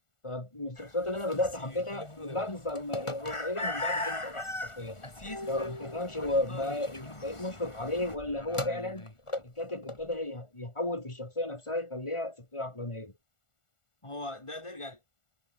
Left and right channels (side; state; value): right; late; 1.4 ms